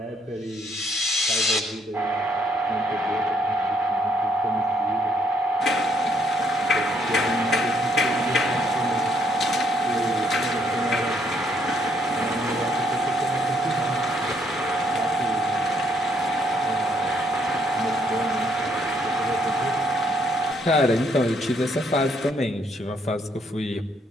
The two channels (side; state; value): both; normal; correlation 0.71